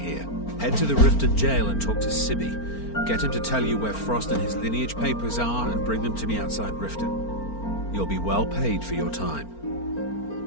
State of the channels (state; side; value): late; right; 4.4 ms